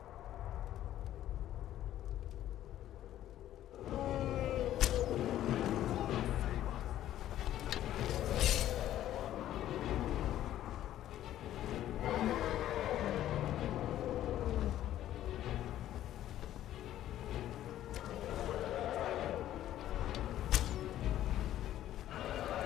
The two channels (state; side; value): quieter; right; 12.6 dB